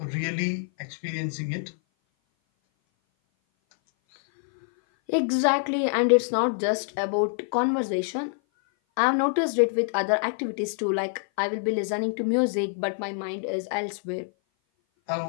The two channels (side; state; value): right; silent; 57 dB below the other